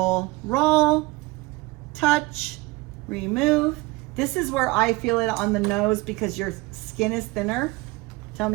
roll. Touch, remove. This is where I feel it on the nose because your skin is thinner. Tell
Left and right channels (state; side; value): quieter; left; 22.6 dB